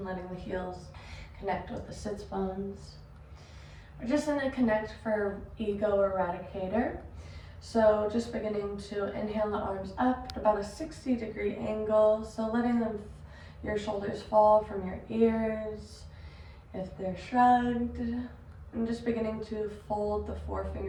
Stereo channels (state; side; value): identical; both; correlation 1.00